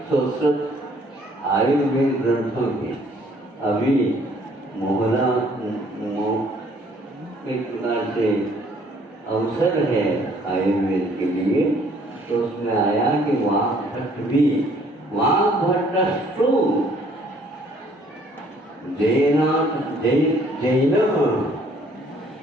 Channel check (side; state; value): both; normal; correlation 0.61